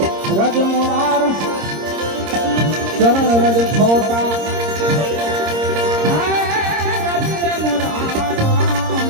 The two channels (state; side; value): late; left; 26 ms